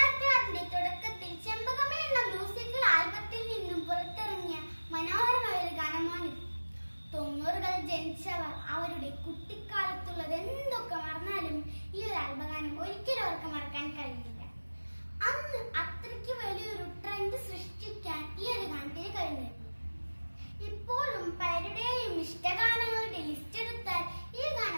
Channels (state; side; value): inverted; both; correlation -1.00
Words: തുടക്കത്തിൽ ചെമ്പകമേ എന്ന മ്യൂസിക്കൽ ആൽബത്തിൽ നിന്നും പുറത്തിറങ്ങിയ മനോഹരമായ ഒരു ഗാനമാണിത്. 90കൾ ജനിച്ചവർ അവരുടെ കുട്ടിക്കാലത്തുള്ളത് എന്തൊക്കെ മറന്നാലും ഈ ഒരു ആൽബഗാനം ഒരിക്കലും അവർക്ക് മറക്കാൻ കഴിയില്ല. അന്ന് അത്രയ്ക്ക് വലിയൊരു ട്രെൻഡ് സൃഷ്ടിക്കാൻ ഈ ഒരു ഗാനത്തിന് കഴിഞ്ഞു. ഇപ്പോഴും പലരുടെയും ഇഷ്ടഗാനങ്ങളുടെ ലിസ്റ്റ് എടുത്താൽ ഈ